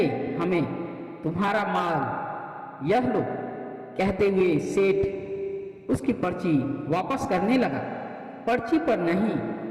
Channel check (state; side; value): identical; both; correlation 1.00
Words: हमें तुम्हारा माल, यह लो। कहते हुए सेठ उसकी पर्ची वापस करने लगा। पर्ची पर नहीं,